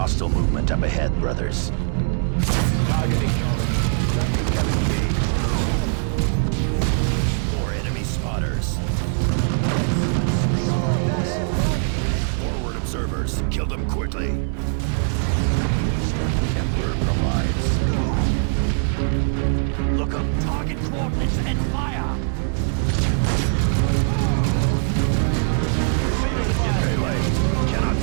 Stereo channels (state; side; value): silent; left; 64 dB below the other